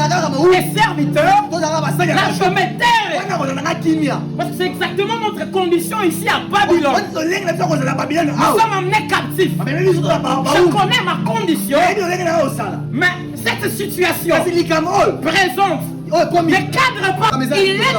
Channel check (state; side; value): identical; both; correlation 1.00